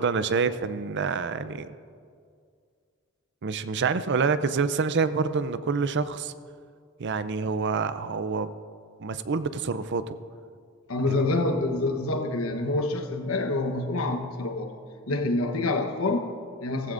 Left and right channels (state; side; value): normal; both; correlation 0.17